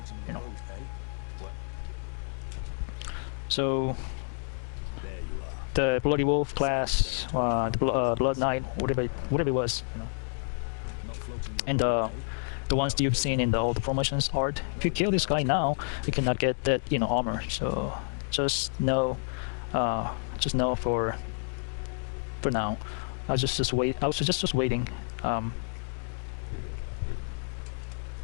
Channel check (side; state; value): right; silent; digital silence